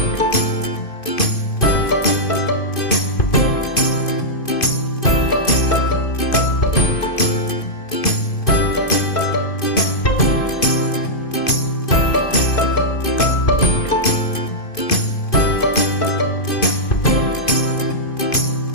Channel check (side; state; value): right; late; 2.5 ms